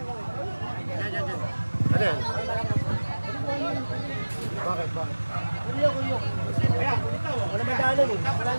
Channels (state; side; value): inverted; both; correlation -1.00